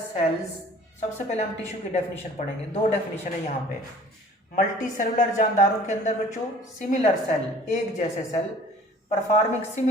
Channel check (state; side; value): normal; both; correlation 0.50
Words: cells, सबसे पहले हम टिश्यू की डेफिनेशन पढ़ेंगे। दो डेफिनेशन है यहाँ पे। मल्टी सेलुलर जानदारों के अंदर बच्चों सिमिलर सेल, एक जैसे सेल, परफॉर्मिंग